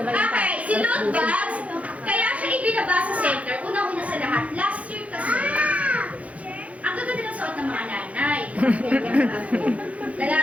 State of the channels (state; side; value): late; left; 0.066 ms